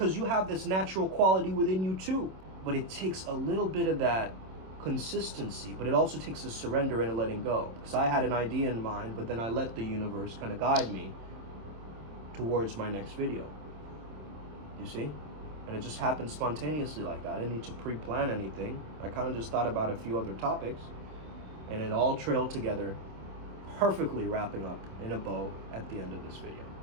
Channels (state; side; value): late; left; 27 ms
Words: you have this natural quality within you too. But it takes a little bit of that consistency, but it also takes a surrender and a letting go. Because I had an idea in mind, but then I let the universe kind of guide me towards my next video. You see? And it just happened spontaneously like that. I didn't need to pre-plan anything. I kind of just thought about a few other topics, and it all trailed together perfectly wrapping up in a bow at the end of this video.